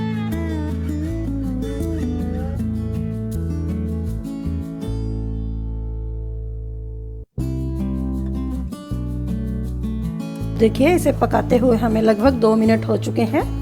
देखिए इसे पकाते हुए हमें लगभग 2 मिनट हो चुके हैं।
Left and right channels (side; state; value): both; identical; correlation 1.00